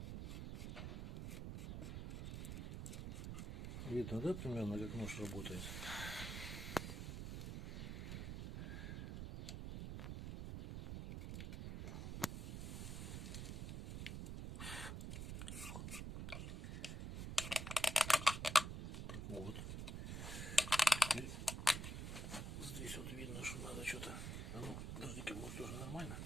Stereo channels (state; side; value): noise; right; rumble, 5 dB below the sound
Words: Видно, да, примерно, как нож работает? Так вот. Теперь здесь вот видно, что надо что-то... А ну, подожди-ка, может тоже нормально.